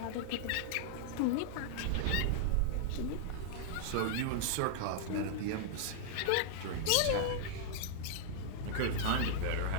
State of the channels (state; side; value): different; both; correlation -0.01